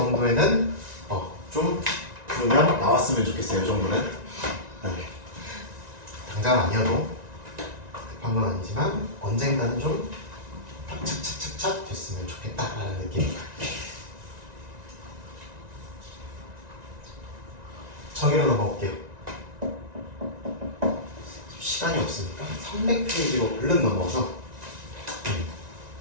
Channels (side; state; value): left; late; 1.9 ms